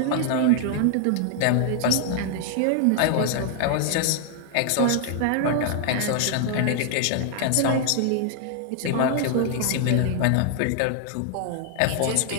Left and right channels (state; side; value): different; both; correlation -0.01